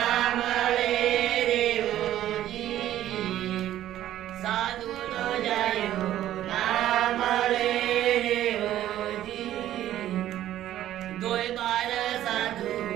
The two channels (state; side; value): quieter; left; 12.7 dB